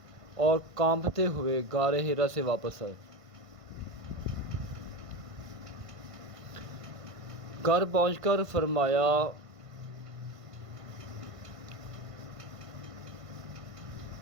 اور کانپتے ہوئے غار حرا سے واپس آئے۔ گھر پہنچ کر فرمایا،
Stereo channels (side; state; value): left; late; 1.5 ms